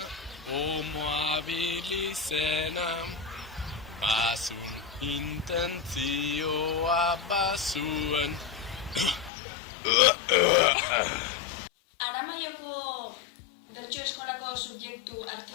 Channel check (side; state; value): right; drops out; at 9.3 s